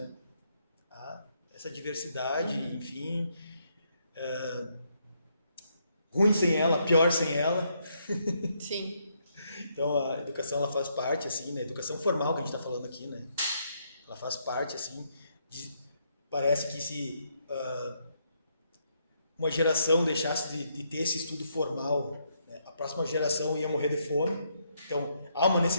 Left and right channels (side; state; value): both; inverted; correlation -0.75